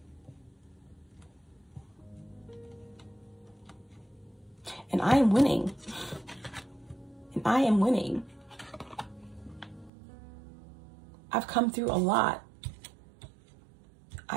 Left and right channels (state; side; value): drops out; left; at 9.9 s